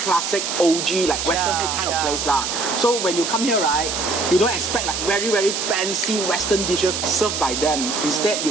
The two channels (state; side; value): noise; right; hiss, 3 dB below the sound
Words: OG, like Western food kind of place lah. So when you come here, right, you don't expect like very, very fancy Western dishes served by them. Instead,